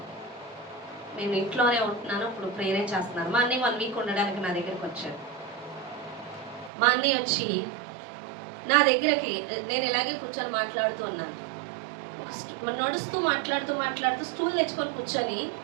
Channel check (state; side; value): drops out; left; at 6.7 s